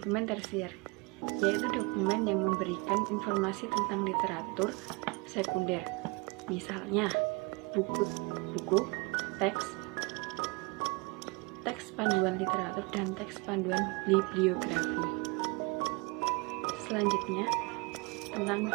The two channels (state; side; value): quieter; left; 27.8 dB